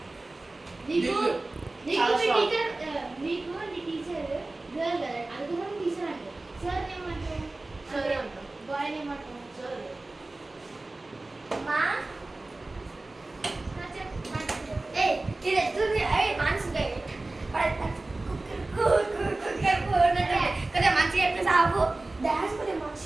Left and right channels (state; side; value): quieter; left; 3.0 dB